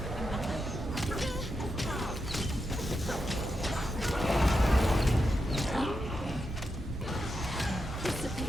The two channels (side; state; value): both; normal; correlation 0.86